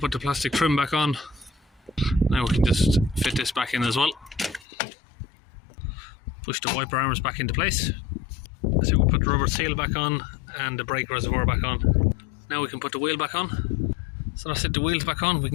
the plastic trim back on. Now we can just fit this back in as well. Push the wiper arms back into place. So we'll put the rubber seal back on and the brake reservoir back on. Now we can put the wheel back on. So that's it, the wheel's back on, we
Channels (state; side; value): drops out; right; at 4.7 s